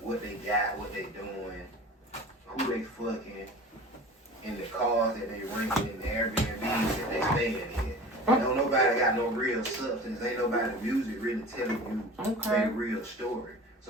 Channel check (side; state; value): both; normal; correlation 0.38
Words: what they got, what they doing, who they fucking, in the cars that they renting, in the Airbnbs that they staying in. Don't nobody got no real substance. Ain't nobody music really telling you their real story.